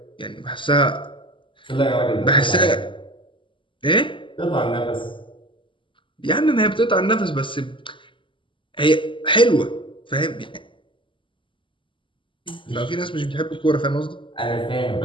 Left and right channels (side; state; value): right; late; 0.25 ms